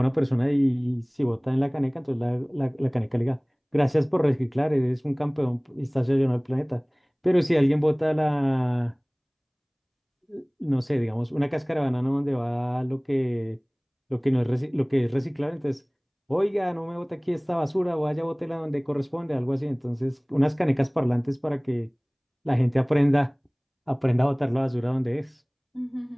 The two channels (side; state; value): both; identical; correlation 1.00